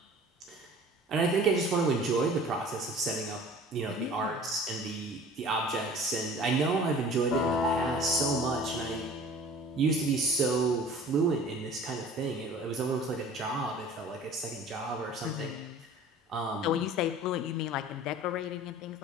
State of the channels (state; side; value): normal; both; correlation 0.45